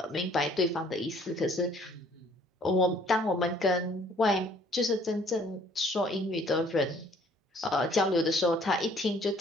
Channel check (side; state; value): both; normal; correlation 0.59